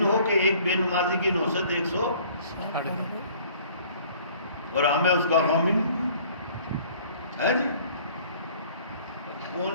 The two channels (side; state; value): both; inverted; correlation -0.54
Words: ہو کہ ایک بے نمازی کی نحوست 160 اور ہمیں اس کا غم ہی نہیں ہے جی۔